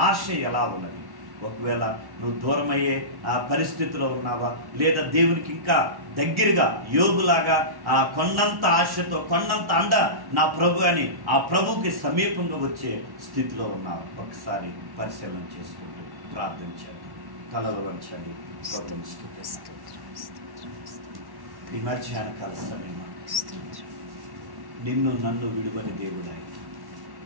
ఆశ ఎలా ఉన్నది? ఒకవేళ నువ్వు దూరమయ్యే ఆ పరిస్థితిలో ఉన్నావా, లేదా దేవునికి ఇంకా దగ్గరగా యోబులాగా ఆ కొండంత ఆశతో, కొండంత అండ నా ప్రభు అని ఆ ప్రభుకి సమీపంగా వచ్చే స్థితిలో ఉన్నావు? ఒకసారి పరిశీలన చేసుకుంటూ ప్రార్థించండి, తలలు వంచండి. ఈ మధ్యాహ్న కాల సమయం నిన్ను నన్ను విడువని దేవుడాయి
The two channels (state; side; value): late; left; 1.1 ms